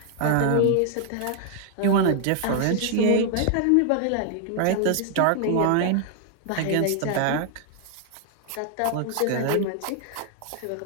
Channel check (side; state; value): both; different; correlation 0.00